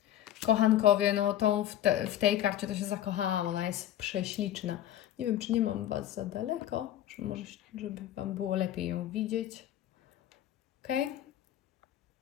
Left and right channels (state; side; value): quieter; right; 11.9 dB